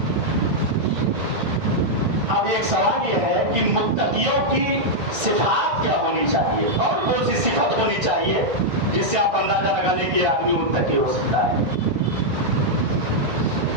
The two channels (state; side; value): late; left; 1.9 ms